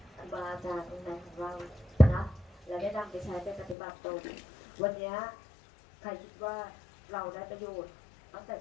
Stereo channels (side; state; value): right; drops out; at 3.8 s